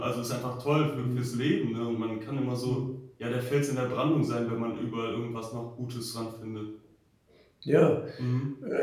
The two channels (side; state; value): both; identical; correlation 1.00